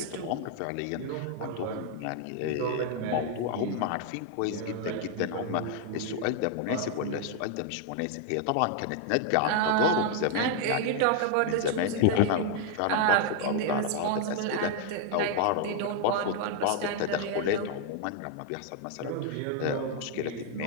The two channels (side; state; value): both; different; correlation 0.00